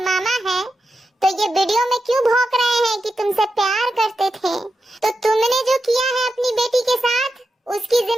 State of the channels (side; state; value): both; normal; correlation 0.88